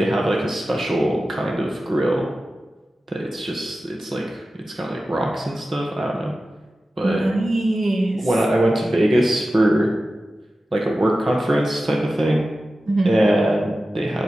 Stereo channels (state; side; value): normal; both; correlation 0.94